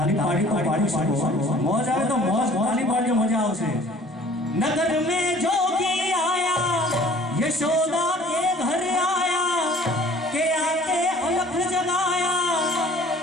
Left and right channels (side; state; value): both; normal; correlation 0.51